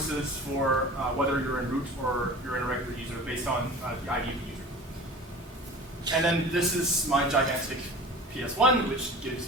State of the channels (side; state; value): both; normal; correlation 0.38